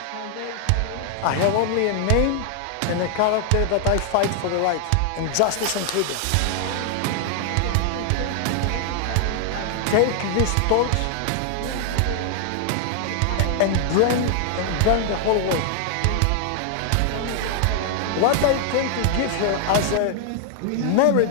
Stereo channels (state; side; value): different; both; correlation 0.00